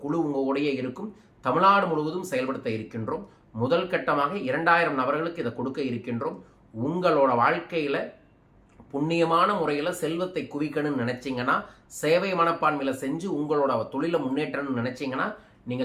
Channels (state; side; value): identical; both; correlation 1.00